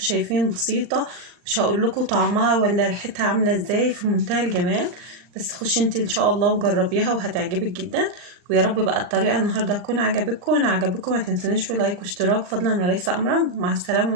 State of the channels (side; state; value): left; late; 39 ms